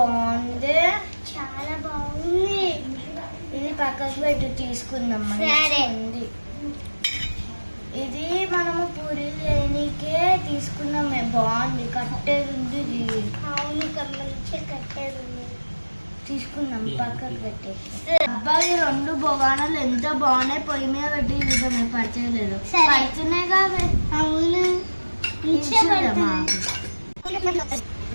చాలా బాగుంది. ఇది పక్కకు పెట్టు, తీసుకుందాం. ఉంది ఇది మనము పూరీలు చేయడానికే తీసుకున్నామే, బాగుంది. కట్టేది ఉంది ఇది. అవును మంచిగా కట్టేది ఉంది, తీసుకుందాం. పక్కకు పెట్టేసి. అబ్బాయి 2 బొగానాలు ఎంత బాగున్నాయి, పొయ్యి మీద పెట్టి చూద్దాం. పడిచేయలేదు, పడుతున్నాయి కావే. అవును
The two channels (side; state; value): both; inverted; correlation -1.00